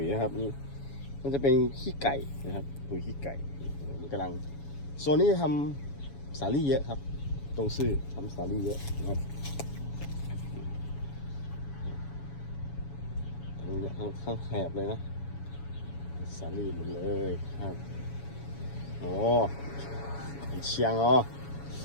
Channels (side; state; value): right; late; 7.1 ms